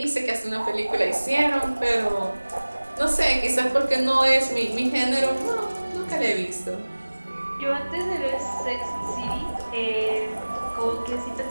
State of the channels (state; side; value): inverted; both; correlation -1.00